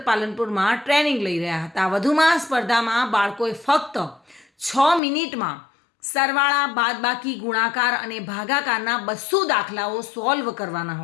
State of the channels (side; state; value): right; drops out; at 5.0 s